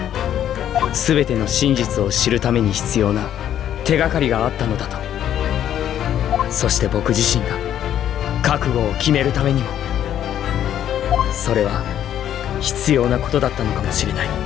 すべての真実を知るために必要な手がかりがあったのだと。そして僕自身が覚悟を決めるためにも、それは必要なことだったのかもしれない。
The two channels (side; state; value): right; quieter; 10.6 dB